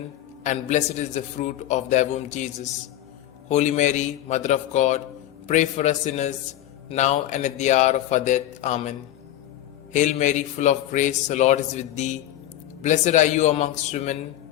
and blessed is the fruit of thy womb, Jesus. Holy Mary, Mother of God, pray for us sinners, now and at the hour of our death. Amen. Hail Mary, full of grace, the Lord is with thee. Blessed are you amongst women,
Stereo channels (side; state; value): right; quieter; 13.1 dB